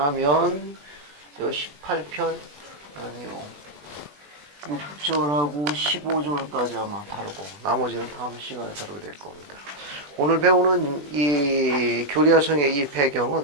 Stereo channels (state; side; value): late; left; 20 ms